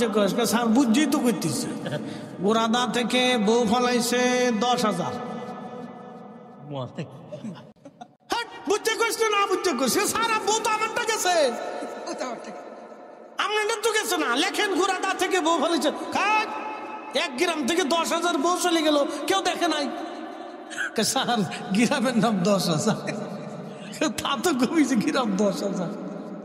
কস, স্যার বুঝছি তো করতেছে। গোড়াদা থেকে বউ ফালাইছে 10,000। বুঝছে কস না বুঝছে কস, সারা বউ তো আমারটা গেছে, আপনার তো গেছে না। লেখেন গোড়াদা থেকে বউ ফালাইছে, এক গ্রাম থেকে 10,000 বউ চলে গেল, কেউ দেখে নাই। স্যার গ্রামের নাম 10,000, তা তো কমিছে গ্রাম 10,000।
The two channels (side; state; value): both; identical; correlation 1.00